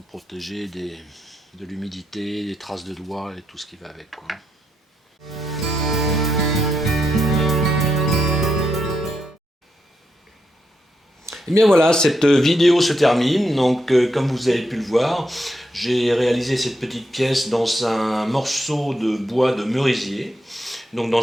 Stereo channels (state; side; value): normal; both; correlation 0.81